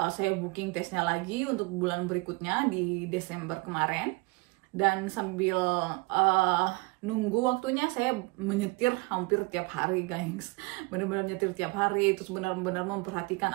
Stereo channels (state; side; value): quieter; left; 26.2 dB